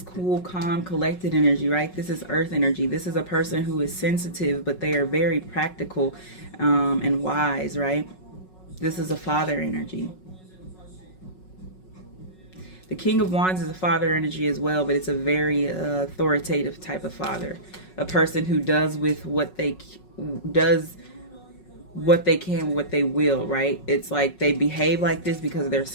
cool, calm, collected energy, right? This is earth energy. This is a person who is sensitive, but they are very practical and wise, right? This is a father energy. The King of Wands is a father energy as well, but it's a very authoritative type of father. A person who does with what they can, what they will, right? It's like they behave like this because of their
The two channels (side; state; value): right; late; 5.4 ms